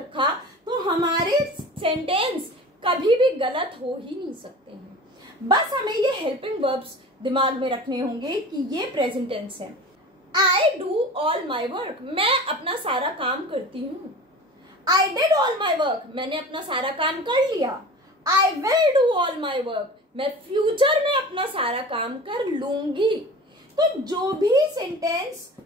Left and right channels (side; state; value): both; normal; correlation 0.37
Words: तो हमारे सेंटेंस कभी भी गलत हो ही नहीं सकते हैं। बस हमें ये हेल्पिंग वर्ब्स दिमाग में रखने होंगे कि ये प्रेजेंट टेंस है। I do all my work, मैं अपना सारा काम करती हूँ। I did all my work, मैंने अपना सारा काम कर लिया। I will do all my work, मैं फ्यूचर में अपना सारा काम कर लूंगी। तो जो भी सेंटेंस